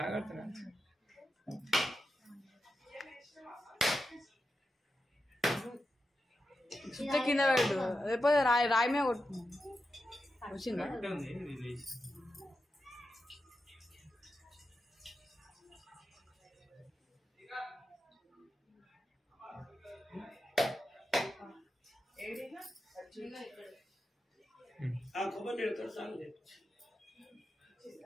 కింద పెట్టు లేకపోతే రాయి మీద కొట్టు వచ్చిందా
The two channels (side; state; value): both; normal; correlation 0.89